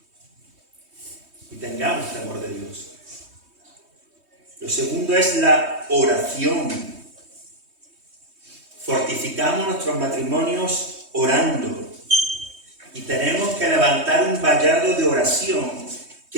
Y tengamos temor de Dios. Lo segundo es la oración. Fortificamos nuestros matrimonios orando. Y tenemos que levantar un vallado de oración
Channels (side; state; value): left; late; 3.2 ms